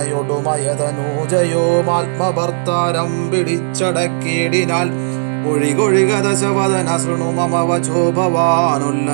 പിടിച്ചടക്കിയിടിനാൽ. ഒഴികൊഴിക ദശവദന ശൃണു മമ വചോ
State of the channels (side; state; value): left; silent; digital silence